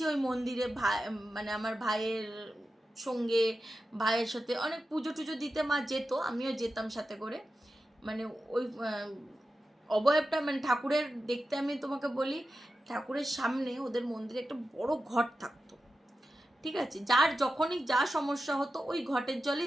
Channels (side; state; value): both; normal; correlation 0.92